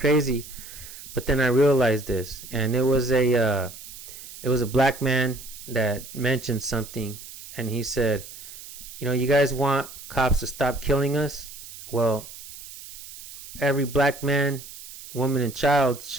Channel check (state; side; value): noise; right; hiss, 14 dB below the sound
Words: but then I realized this, and it was it was a black man that mentioned something, and he said, you guys want cops to stop killing us? Well, every black man, woman, and child